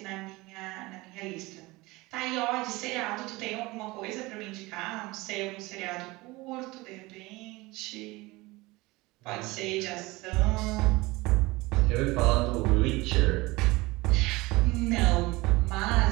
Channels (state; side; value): quieter; left; 21.7 dB